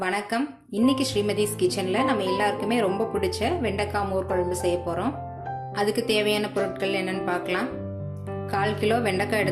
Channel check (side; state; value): both; identical; correlation 1.00